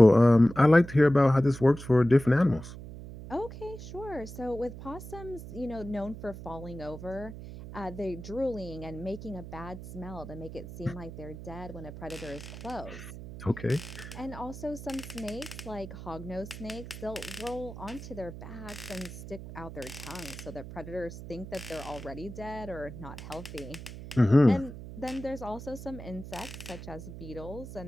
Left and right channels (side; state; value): right; noise; hum, 12 dB below the sound